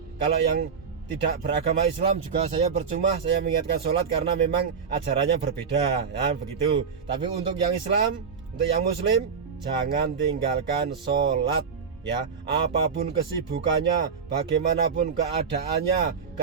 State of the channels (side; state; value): left; quieter; 6.0 dB